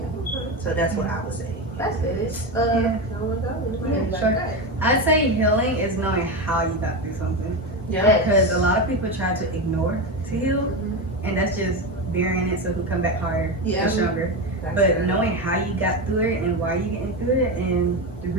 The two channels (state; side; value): normal; both; correlation 0.16